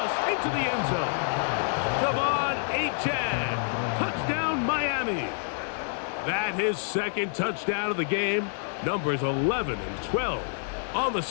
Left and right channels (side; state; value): right; silent; 60 dB below the other